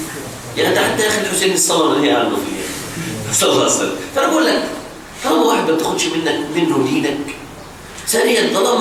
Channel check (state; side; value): identical; both; correlation 1.00